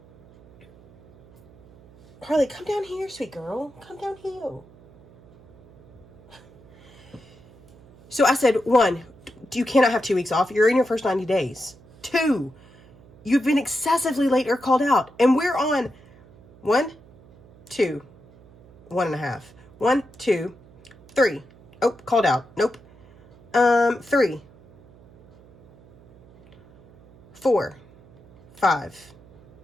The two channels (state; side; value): noise; right; hum, 25 dB below the sound